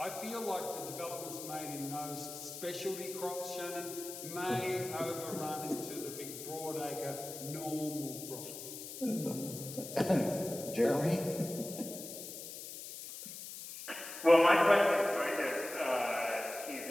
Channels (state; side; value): noise; left; hiss, 10 dB below the sound